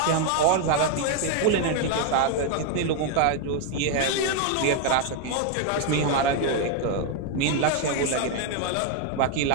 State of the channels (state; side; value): different; both; correlation 0.01